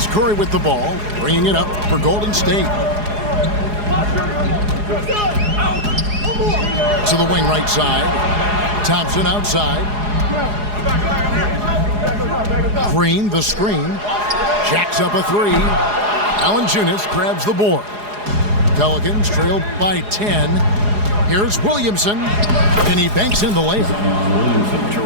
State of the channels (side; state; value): left; late; 4.8 ms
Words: Curry with the ball, bringing it up for Golden State. To the wing right side. Thompson outside. Green, the screen. Jacks up a 3. Valanciunas grabs the board. Pelicans trail by 10. Here's Williamson, and he banks in the layup.